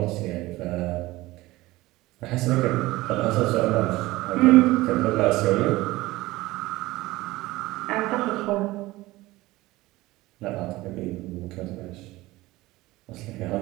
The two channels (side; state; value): left; quieter; 18.9 dB